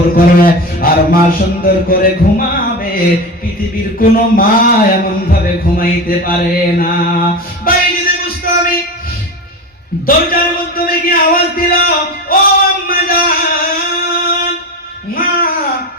করে আর মা সুন্দর করে ঘুমাবে, পৃথিবীর কোনো মা এমন ভাবে ঘুমাইতে পারে না। বাইরে বুঝতো আমি দরজার মাধ্যমে কি আওয়াজ দিল, ও আম্মা জান। মা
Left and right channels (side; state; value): both; normal; correlation 0.25